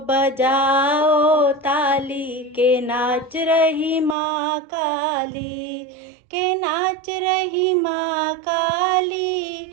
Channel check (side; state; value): left; drops out; at 4.2 s